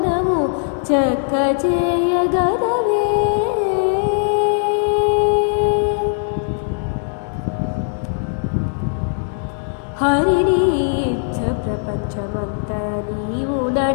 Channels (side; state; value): right; silent; digital silence